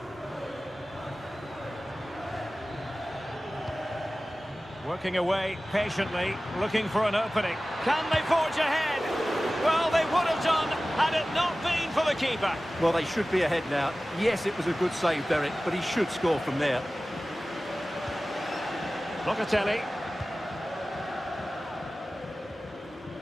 Working away patiently, looking for an opening. Can they forge ahead? Well, they would have done had it not been for the keeper. Well, they should be ahead now. Yes, it was a good save, Derek, but he should score from there. Locatelli.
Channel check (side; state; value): both; normal; correlation 0.97